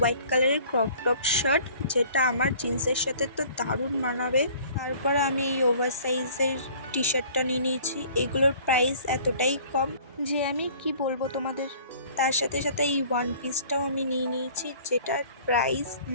কালারের ক্রপ টপ শার্ট, যেটা আমার জিন্সের সাথে তো দারুণ মানাবে। তারপরে আমি এই ওভার সাইজের টি শার্টটা নিয়ে নিয়েছি। এগুলোর প্রাইস এতটাই কম যে আমি কি বলবো তোমাদের। তার সাথে সাথে এই ওয়ান পিসটাও আমি নিয়ে নিয়েছি, যেটার প্রাইস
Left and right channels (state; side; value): inverted; both; correlation -0.50